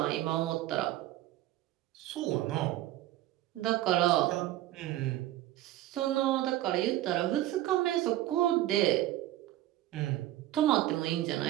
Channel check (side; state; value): left; quieter; 14.6 dB